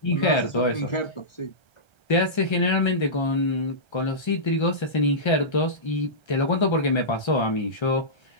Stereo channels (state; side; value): late; right; 1.3 ms